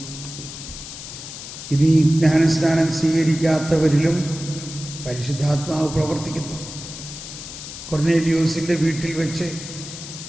ഇനി ജ്ഞാനസ്നാനം സ്വീകരിക്കാത്തവരിലും പരിശുദ്ധാത്മാവ് പ്രവർത്തിക്കുന്നു. കൊർന്നേലിയോസിൻ്റെ വീട്ടിൽ വെച്ച്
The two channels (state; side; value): noise; left; hiss, 11 dB below the sound